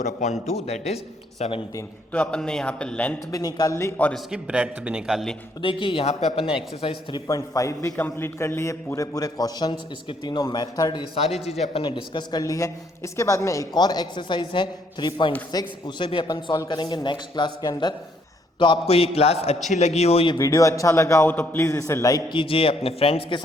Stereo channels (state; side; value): normal; both; correlation 0.69